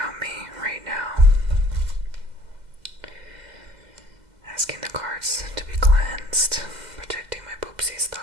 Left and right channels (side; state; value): left; late; 2.0 ms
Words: me right now. Asking the cards to be cleansed, protecting my poopsies,